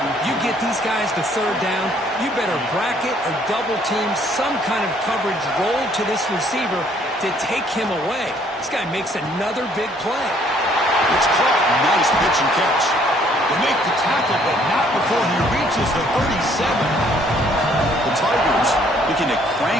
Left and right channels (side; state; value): both; normal; correlation 0.63